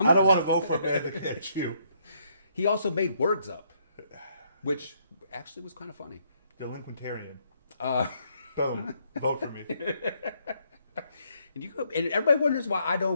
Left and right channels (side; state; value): both; inverted; correlation -0.71